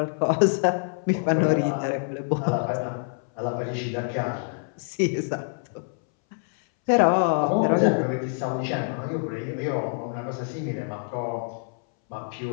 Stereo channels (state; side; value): silent; right; 61 dB below the other